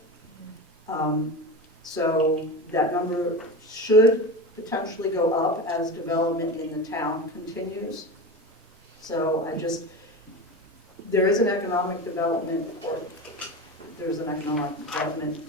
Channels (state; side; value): normal; both; correlation 0.26